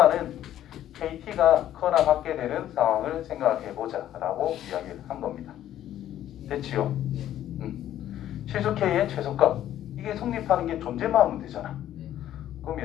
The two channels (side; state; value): right; quieter; 12.0 dB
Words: KT가 커나 같게 되는 상황을 생각해보자 라고 이야기를 한 겁니다. 됐지요? 실수 K의 최소값 이게 성립하는 게 존재만 하면 되잖아.